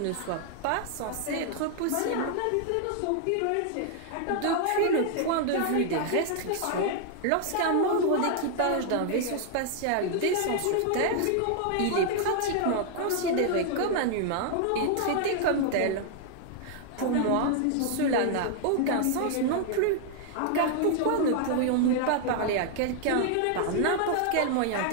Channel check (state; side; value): different; both; correlation 0.00